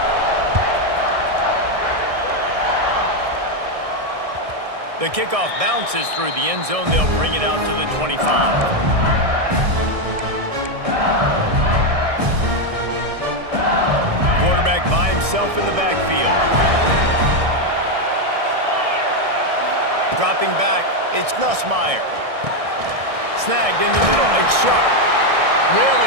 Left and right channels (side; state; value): left; late; 1.6 ms